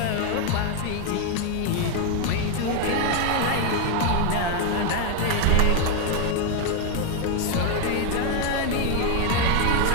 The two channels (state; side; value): different; both; correlation 0.01